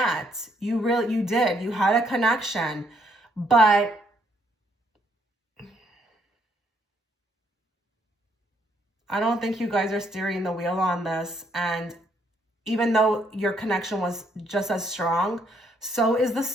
You did. You had a connection. But I don't think you guys are steering the wheel on this. And even though your connection was just as strong, so is the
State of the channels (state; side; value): normal; both; correlation 0.71